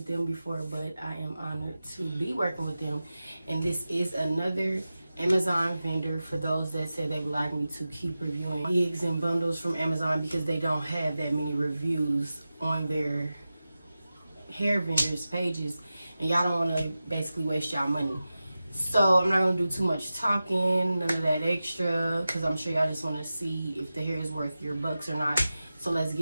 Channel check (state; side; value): inverted; both; correlation -0.94